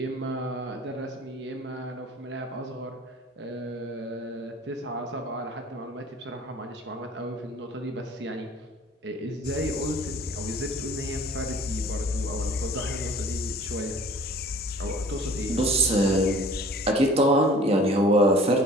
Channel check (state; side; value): normal; both; correlation 0.49